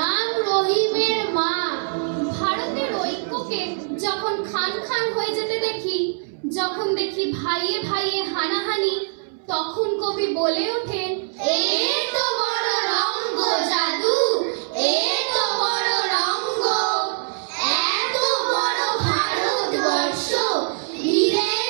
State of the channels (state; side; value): silent; left; 64 dB below the other